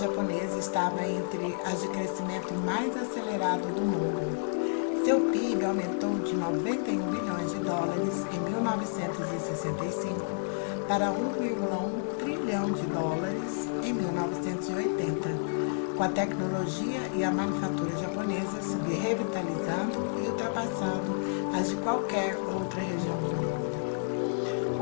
estava entre as de crescimento mais acelerado do mundo. Seu PIB aumentou de 91 bilhões de dólares em 1965 para 1,1 trilhão de dólares em 1980, com a tecnologia e a manufatura japonesa se revitalizando e ultrapassando as de qualquer outra região do mundo.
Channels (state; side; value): silent; right; digital silence